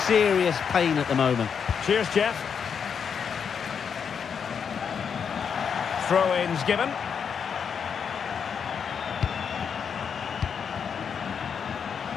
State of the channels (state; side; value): quieter; right; 6.9 dB